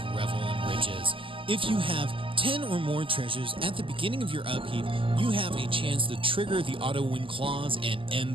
Revel in Riches. If you have 10 or more treasures at the beginning of your upkeep, you have a chance to trigger the auto win clause and end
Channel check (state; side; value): late; left; 0.25 ms